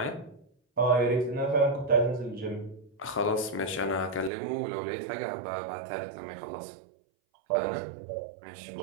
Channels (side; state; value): left; drops out; at 4.3 s